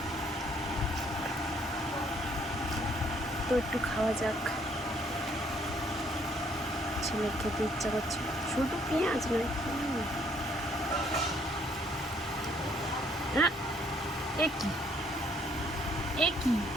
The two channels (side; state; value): both; normal; correlation 0.66